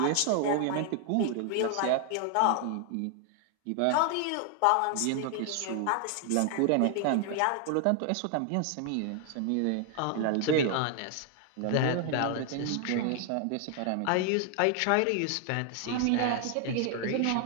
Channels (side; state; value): both; different; correlation 0.00